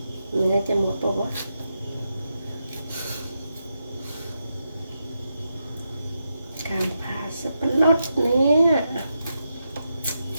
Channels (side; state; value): both; inverted; correlation -0.85